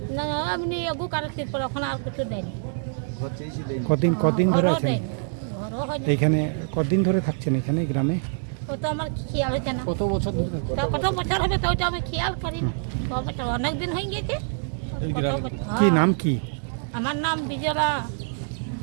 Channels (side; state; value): left; silent; 61 dB below the other